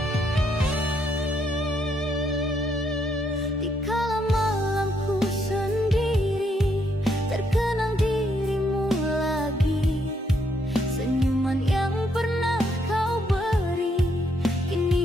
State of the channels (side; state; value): both; normal; correlation 0.74